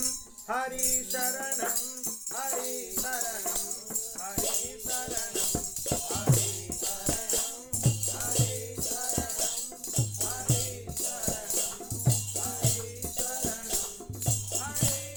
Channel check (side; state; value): both; identical; correlation 1.00